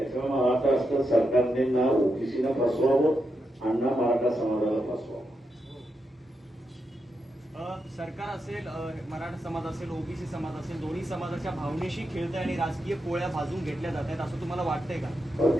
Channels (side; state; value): both; normal; correlation 0.85